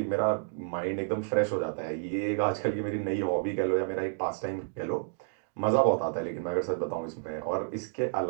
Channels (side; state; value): left; silent; digital silence